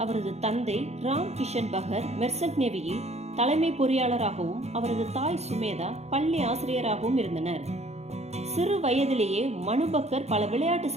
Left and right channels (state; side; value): late; left; 0.31 ms